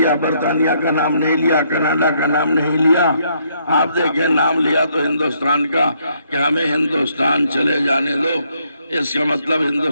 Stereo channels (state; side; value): inverted; both; correlation -0.71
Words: برطانیہ کا نام نہیں لیا، کینیڈا کا نام نہیں لیا۔ آپ دیکھیں، نام لیا تو ہندوستان کا کہ ہمیں ہندوستان چلے جانے دو۔ اس کا مطلب